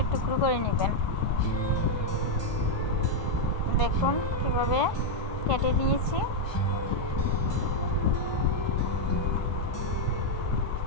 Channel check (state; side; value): late; right; 1.2 ms